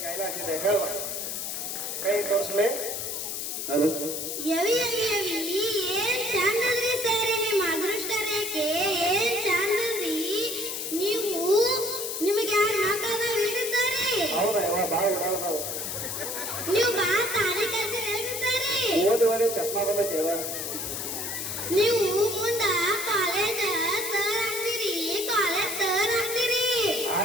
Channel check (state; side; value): noise; left; hiss, 4 dB below the sound